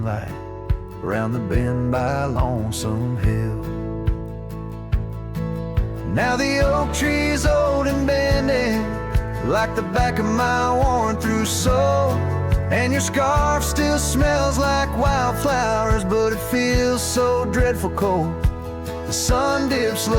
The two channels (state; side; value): identical; both; correlation 1.00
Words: around the bend by Lonesome Hill. Now the oak tree's old and bending, like the back of my worn-through soul, and your scarf still smells like wildflowers, but it feels so dreadful cold. The sun dips